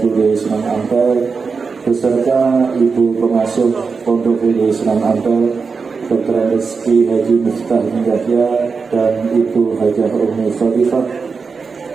Sunan Ampel beserta Ibu Pengasuh Pondok Fude Sunan Ampel, Dr. Rizky Haji Miftah Yahya dan Ibu Hajah Umi Khalifah.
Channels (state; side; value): quieter; left; 5.0 dB